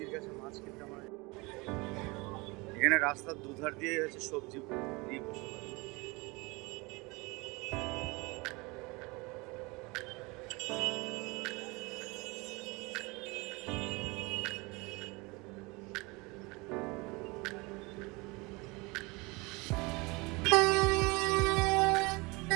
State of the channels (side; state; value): left; quieter; 25.7 dB